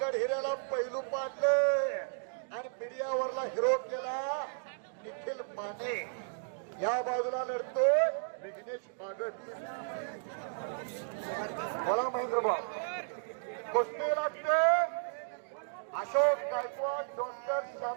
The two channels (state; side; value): silent; left; digital silence